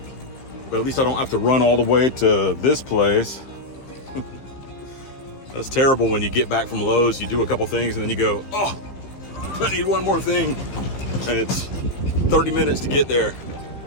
But at least I don't have to run all the way to this place. That's terrible when you get back from Lowe's, you do a couple things, and then you go, oh, I need one more thing. And it's 30 minutes to get there.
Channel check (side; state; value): right; late; 15 ms